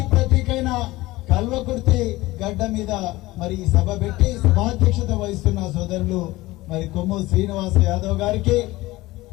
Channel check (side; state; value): right; quieter; 19.1 dB